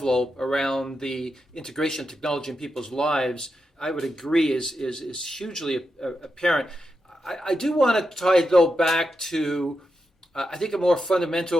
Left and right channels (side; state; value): both; normal; correlation 0.86